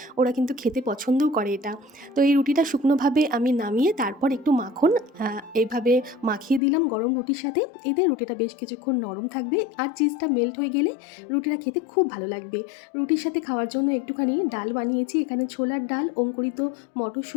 ওরা কিন্তু খেতে পছন্দও করে এটা। তো এই রুটিটা শুকনোভাবে আমি নামিয়ে তারপর একটু মাখন এইভাবে মাখিয়ে দিলাম গরম রুটির সাথে। এতে রুটিটা বেশ কিছুক্ষণ নরম থাকবে, আর চিজটা মেল্ট হয়ে গেলে রুটিটা খেতে খুব ভালো লাগবে। রুটির সাথে খাওয়ার জন্য একটুখানি ডাল বানিয়েছি, এখানে ছোলার ডাল, অঙ্কুরিত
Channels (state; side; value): drops out; right; at 6.6 s